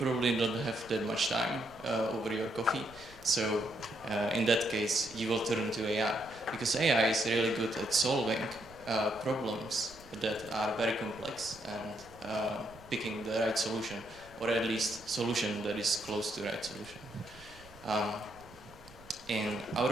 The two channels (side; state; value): right; noise; rumble, 22 dB below the sound